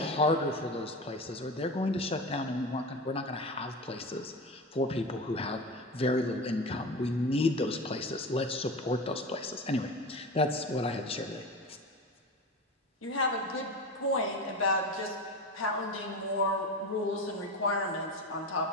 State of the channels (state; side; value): normal; both; correlation 0.26